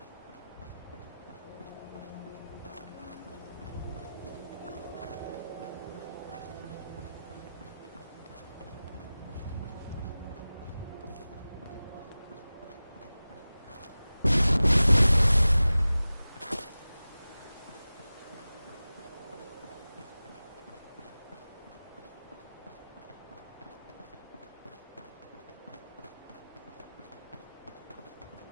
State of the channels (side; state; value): both; inverted; correlation -0.96